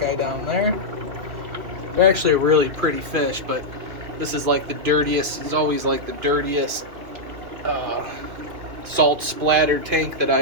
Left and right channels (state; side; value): late; left; 2.4 ms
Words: down there. They're actually a really pretty fish, but this is like the dirtiest, it's always like the dirtiest salt splattered tank that